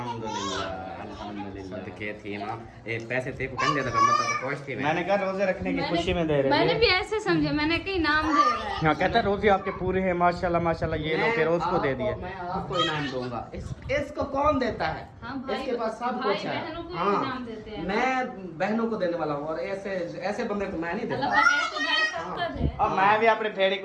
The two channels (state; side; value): identical; both; correlation 1.00